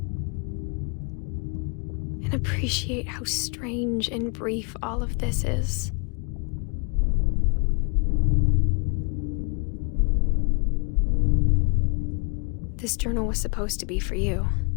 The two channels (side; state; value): right; quieter; 35.1 dB